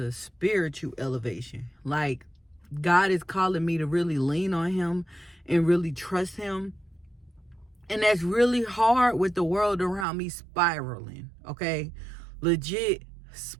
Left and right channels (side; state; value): left; drops out; at 10.1 s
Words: spiritual elevation. Like, God is calling me to really lean on Him and really trust Him. And that's really hard with the world around me spiraling, okay? Legit